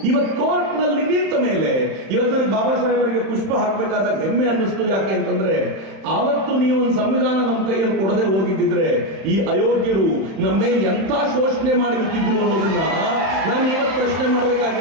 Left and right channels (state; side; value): late; left; 31 ms